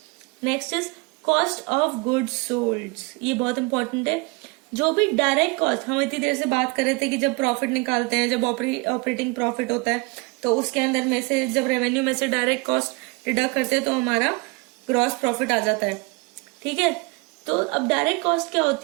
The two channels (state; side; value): quieter; left; 27.4 dB